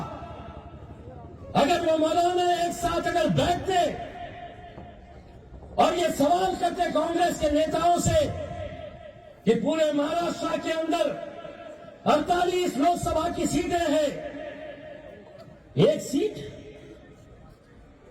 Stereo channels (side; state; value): both; identical; correlation 1.00